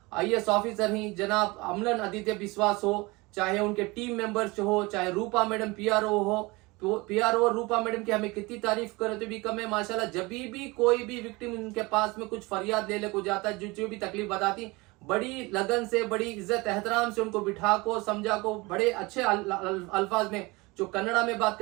IAS ऑफिसर हैं जनाब अमलन आदित्य विश्वास हो, चाहे उनके टीम मेंबर्स हो, चाहे रूपा मैडम PRO हो, तो PRO और रूपा मैडम की हमें कितनी तारीफ करे तो भी कम है माशाल्लाह। जब भी कोई भी विक्टिम उनके पास में कुछ फरियाद ले को जाता है, जो भी तकलीफ बताती, बड़ी लगन से, बड़ी इज्जत एहतराम से उनको बिठा को समझा को बड़े अच्छे अल्फाज में, जो कन्नड़ा में बात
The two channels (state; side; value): quieter; left; 24.0 dB